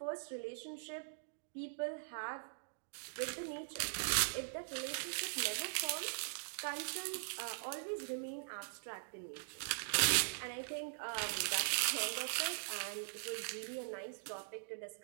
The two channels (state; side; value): silent; left; digital silence